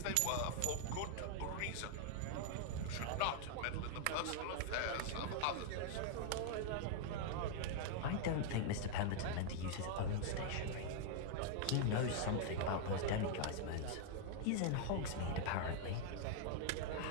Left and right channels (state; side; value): different; both; correlation 0.00